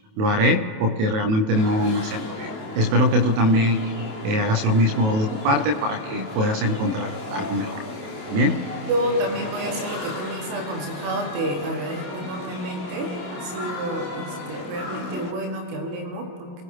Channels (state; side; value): late; left; 28 ms